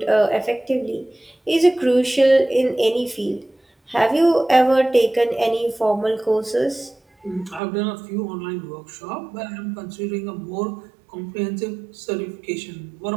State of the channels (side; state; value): left; drops out; at 7.6 s